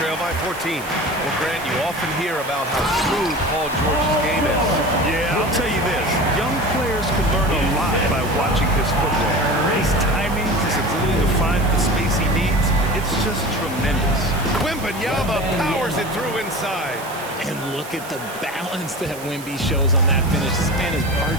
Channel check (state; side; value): noise; right; hiss, 16 dB below the sound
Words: by 14. Well, Grant, you often hear about how smooth Paul George's game is. Yeah, I'll tell you this. Young players can learn a lot by watching his footwork. His timing, his ability to find the space he needs, it's just tremendous. Wembanyama powers it through inside. And look at the balance that Wemby shows on that finish. This man is